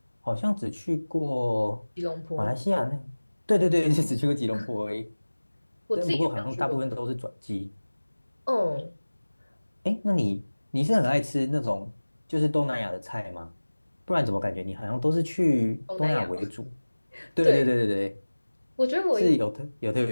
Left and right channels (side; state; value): both; inverted; correlation -1.00